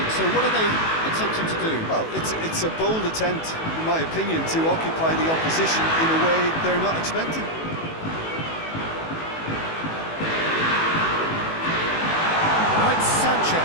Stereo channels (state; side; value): late; right; 18 ms